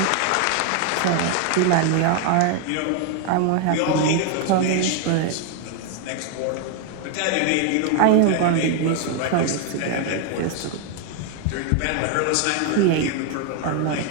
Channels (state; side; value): different; both; correlation 0.01